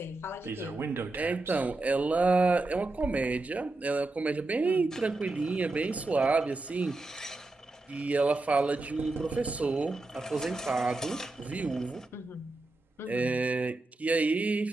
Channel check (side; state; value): left; quieter; 3.1 dB